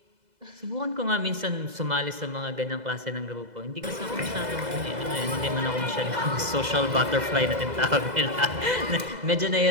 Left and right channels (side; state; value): left; late; 2.0 ms